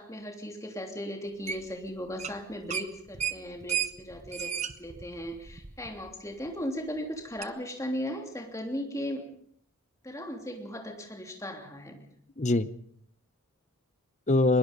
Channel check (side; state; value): both; normal; correlation 0.53